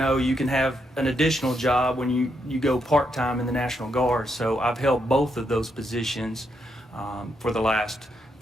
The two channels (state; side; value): normal; both; correlation 0.79